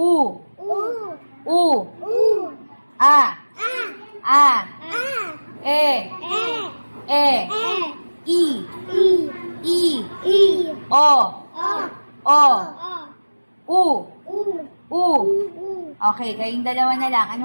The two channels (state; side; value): inverted; both; correlation -1.00